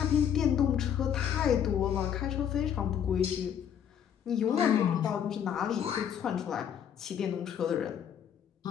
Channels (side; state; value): right; quieter; 8.9 dB